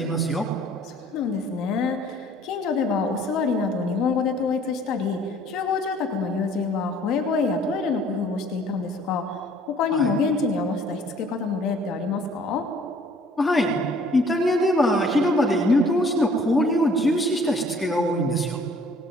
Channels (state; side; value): normal; both; correlation 0.56